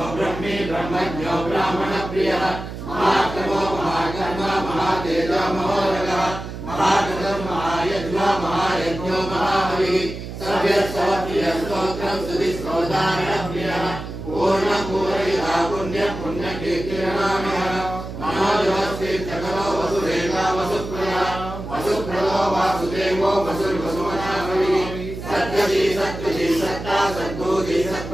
ब्रह्मी ब्रह्मज्ञो ब्राह्मणप्रियः महात्मो महाकर्मा महातेजो महोदगः महागणं महायज्ञो महायज्ञो महाबलिः सव्यस्तवप्रियस्तोत्रं सुधिस्तोदारणप्रियः पूर्णपूरयिता पुण्यकीर्तिरनामयः मनोजवस्तीर्थकरो वसुदेवा वसुप्रियः वसुप्रदो वासुदेवो वसुर्वसुमनाभविः सत्यजी सत्ता सद्बुद्धि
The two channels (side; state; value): right; noise; hum, 9 dB below the sound